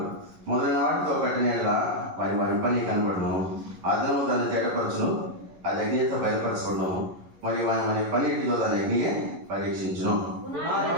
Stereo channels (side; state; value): left; late; 11 ms